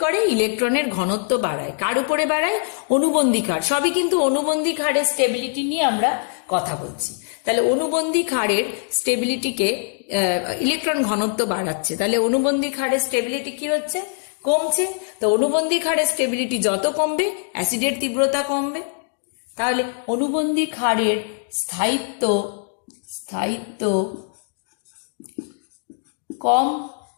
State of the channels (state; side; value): silent; right; 64 dB below the other